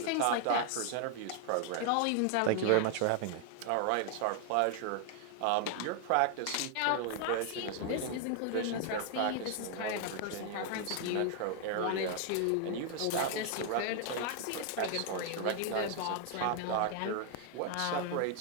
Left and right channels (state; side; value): different; both; correlation 0.00